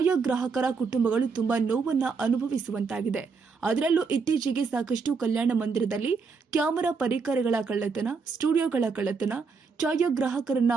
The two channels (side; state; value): left; quieter; 5.0 dB